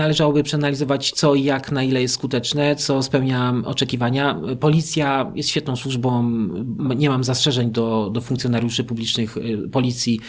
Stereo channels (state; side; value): identical; both; correlation 1.00